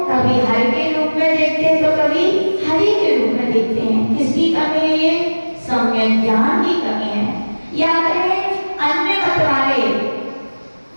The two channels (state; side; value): inverted; both; correlation -1.00